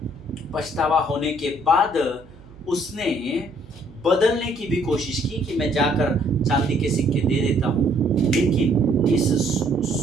पछतावा होने के बाद उसने बदलने की भी कोशिश की कि मैं जाकर चांदी के सिक्के दे देता हूँ, लेकिन इस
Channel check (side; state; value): right; noise; hum, 22 dB below the sound